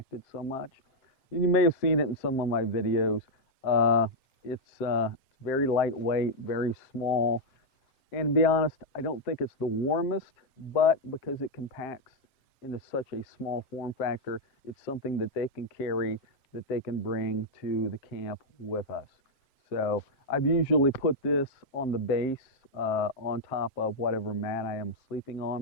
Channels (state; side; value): late; right; 7.6 ms